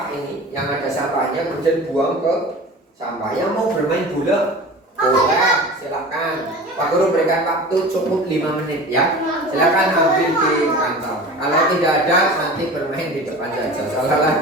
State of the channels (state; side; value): normal; both; correlation 0.36